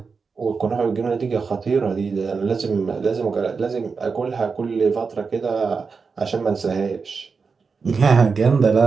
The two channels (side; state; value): left; quieter; 5.0 dB